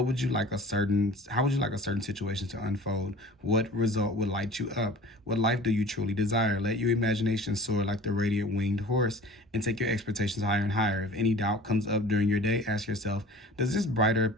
would you like a certain situation to unfold? What result would light you up? What life do you truly desire? Let your imagination soar like the radiant winged horse and take your expectations higher and higher. If any doubt comes up during your day, ask yourself, does this brighter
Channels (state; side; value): normal; both; correlation 0.43